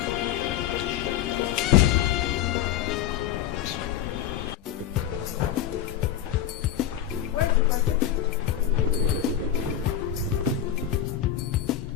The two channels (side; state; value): right; quieter; 10.9 dB